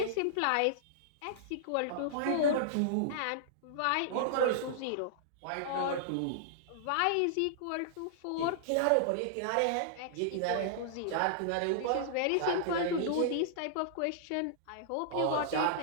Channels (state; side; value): different; both; correlation -0.01